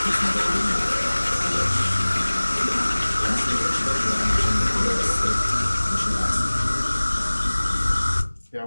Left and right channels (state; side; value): inverted; both; correlation -1.00